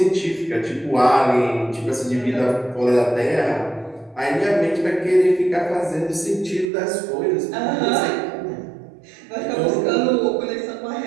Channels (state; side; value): drops out; left; at 6.7 s